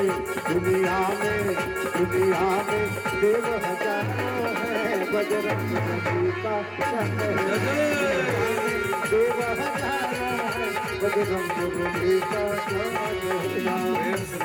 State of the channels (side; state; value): both; identical; correlation 1.00